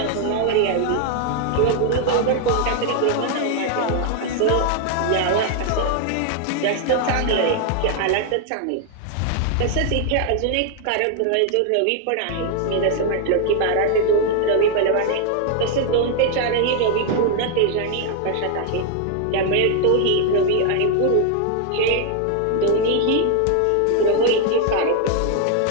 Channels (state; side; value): different; both; correlation 0.00